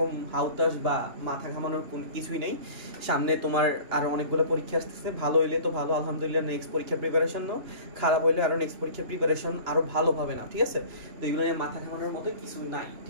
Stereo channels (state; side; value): late; left; 2.9 ms